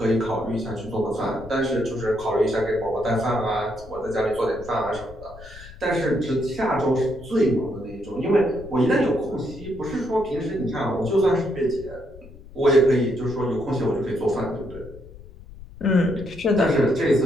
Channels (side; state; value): left; noise; rumble, 17 dB below the sound